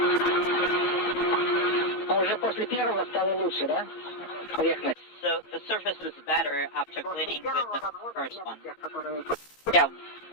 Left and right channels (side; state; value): right; late; 15 ms